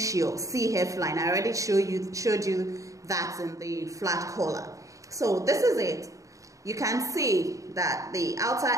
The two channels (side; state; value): left; late; 0.16 ms